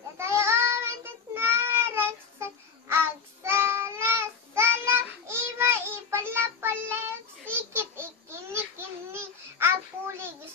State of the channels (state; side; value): quieter; right; 6.1 dB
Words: omentit naraksak. Agsala-sala, iba ipala-palayag. Sikit ikini-kini, agpuligis